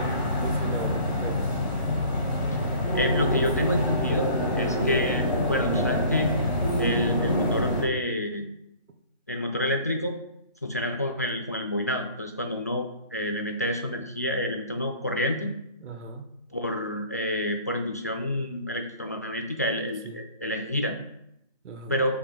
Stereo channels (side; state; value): both; inverted; correlation -0.48